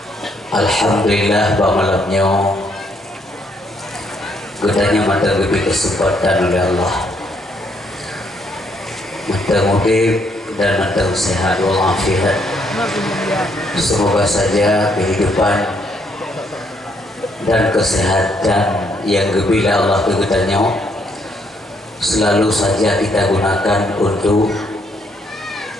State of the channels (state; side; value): normal; both; correlation 0.72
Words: Alhamdulillah bahwa malamnya kita hanya mata lebih kesempatan oleh Allah, mata mudik dan mata sehat walafiat. Semoga saja kehidupan dan kesehatan yang gebila Allah kegetanya selalu saja kita gunakan untuk